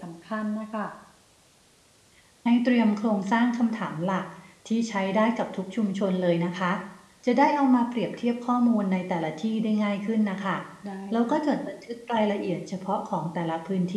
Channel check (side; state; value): both; identical; correlation 1.00